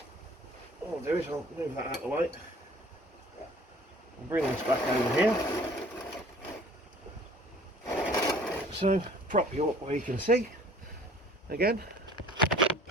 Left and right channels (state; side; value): normal; both; correlation 0.51